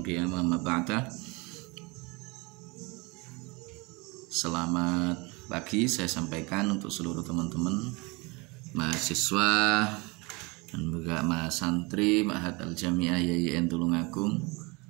ma ba'da. Selamat pagi saya sampaikan untuk seluruh teman-teman mahasiswa dan juga mahasantri Ma'had Al-Jami'ah YIN Tulungagung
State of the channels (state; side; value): quieter; left; 27.0 dB